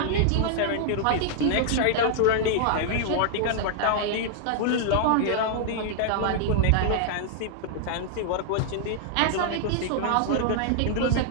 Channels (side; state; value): both; different; correlation -0.01